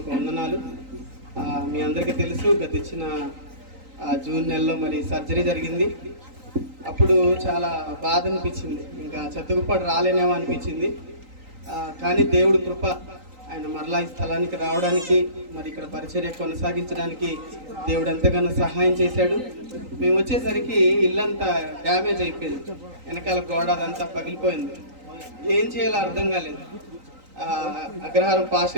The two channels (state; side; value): late; left; 3.9 ms